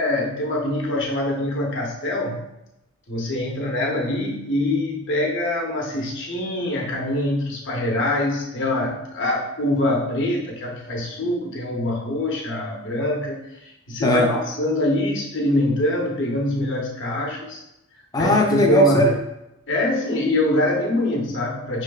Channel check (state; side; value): normal; both; correlation 0.35